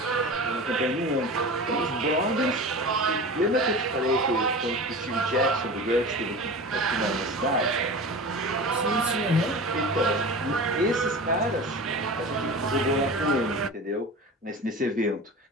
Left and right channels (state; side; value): normal; both; correlation 0.33